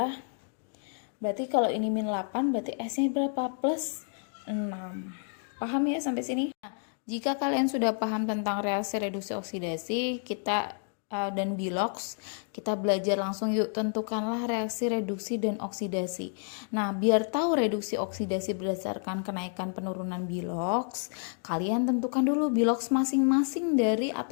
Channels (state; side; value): silent; right; 55 dB below the other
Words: Berarti kalau ini min 8, berarti S-nya berapa? Plus 6. Paham ya sampai sini? Nah, jika kalian sudah paham tentang reaksi reduksi oksidasi, dan bilox, kita belajar langsung yuk. Tentukanlah reaksi reduksi dan oksidasi. Nah, biar tahu reduksi oksidasi berdasarkan kenaikan penurunan bilox, kalian tentukan dulu bilox masing-masing dari